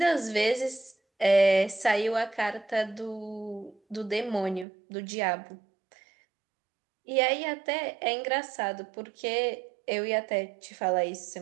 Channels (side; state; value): left; drops out; at 4.7 s